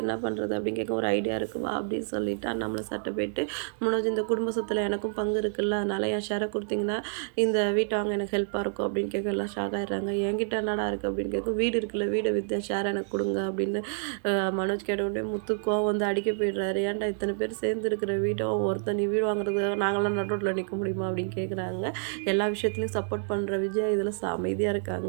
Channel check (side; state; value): left; silent; digital silence